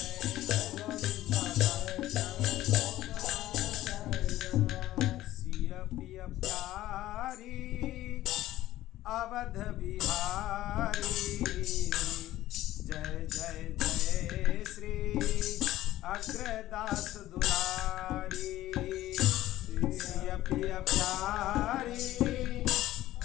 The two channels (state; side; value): quieter; right; 14.9 dB